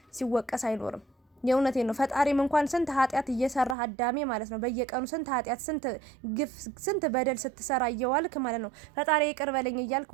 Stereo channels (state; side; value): drops out; left; at 3.8 s